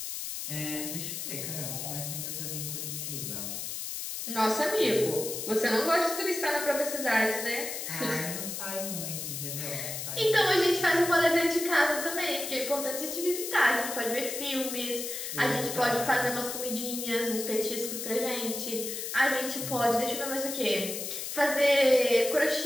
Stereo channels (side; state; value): left; noise; hiss, 5 dB below the sound